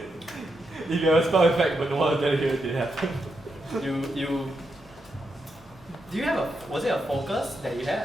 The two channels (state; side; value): normal; both; correlation 0.83